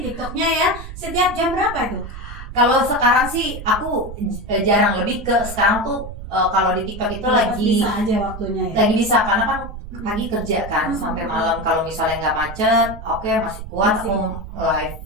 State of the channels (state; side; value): noise; right; rumble, 11 dB below the sound